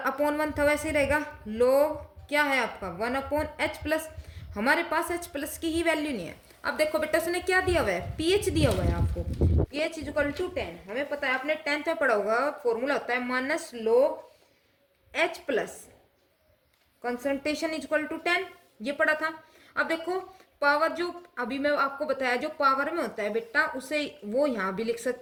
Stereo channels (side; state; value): both; identical; correlation 1.00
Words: 1 था वैसे ही रहेगा, लोग क्या है आपका 1 अपॉन एच प्लस, हमारे पास एच प्लस की ही वैल्यू नहीं है। अब देखो बेटा उसने क्या दिया हुआ है, पीएच दिया हुआ है आपको, पीएच इक्वल टू 10, हमें पता है आपने 10th में पढ़ा होगा, फॉर्मूला होता है minus log H plus concentration equal to 10, ये पढ़ा था। अब देखो पावर जो अभी मैं आपको बताया जो पावर में होता है बेटा, उसे वो यहाँ भी लिख